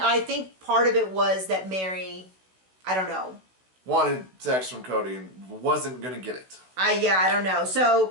think part of it was that Mary, I don't know. Wanted sex from Cody and wasn't going to get it. I don't know.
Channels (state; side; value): late; left; 16 ms